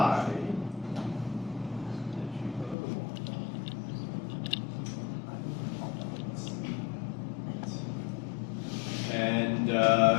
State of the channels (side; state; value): right; drops out; at 2.8 s